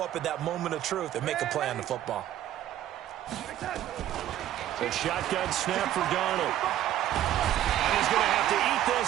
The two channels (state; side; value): quieter; left; 12.3 dB